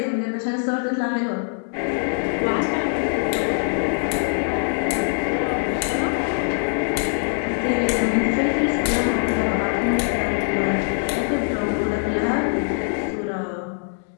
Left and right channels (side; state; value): right; silent; 64 dB below the other